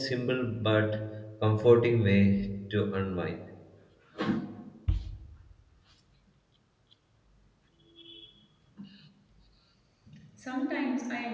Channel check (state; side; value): identical; both; correlation 1.00